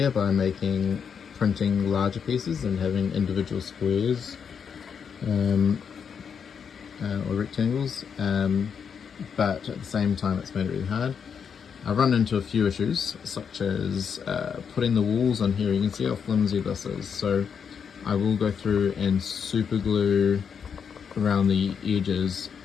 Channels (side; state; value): right; quieter; 6.9 dB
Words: by printing larger pieces and having individual squares or rectangles, but at the same time it's made it really hard. I've run into a few issues, such as putting the walls on here. You can see how flimsy this is, so I will go through and super glue around the edges,